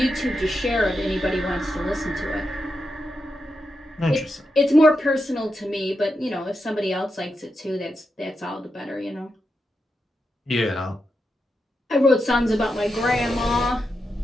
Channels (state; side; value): normal; both; correlation 0.87